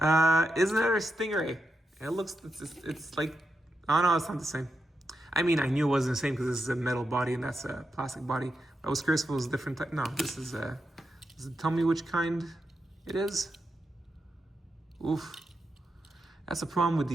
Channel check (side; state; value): both; normal; correlation 0.86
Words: Is another Stingray. It looks, it's like, oh no, it's not the same. I mean, I knew it wasn't the same because this is a metal body and that's a plastic body. I was curious if it was a different type. No, this is a, does it tell me which kind it is? Oof. That's the problem with